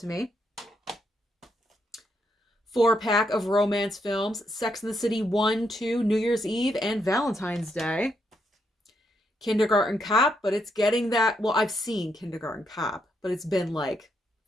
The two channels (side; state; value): both; normal; correlation 0.78